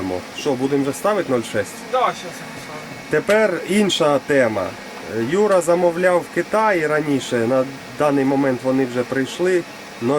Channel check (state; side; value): identical; both; correlation 1.00